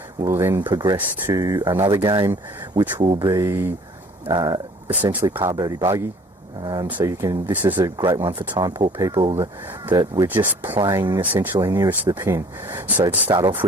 we'll then progress to another game, which will be essentially par birdie bogey. This is a great one for time poor people that we're just playing essentially nearest to the pin. So to start off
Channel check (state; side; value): normal; both; correlation 0.53